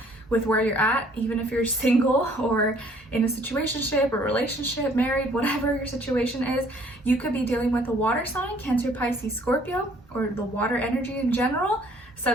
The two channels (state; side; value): normal; both; correlation 0.59